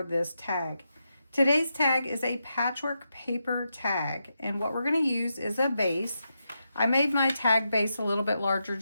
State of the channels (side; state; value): both; inverted; correlation -0.86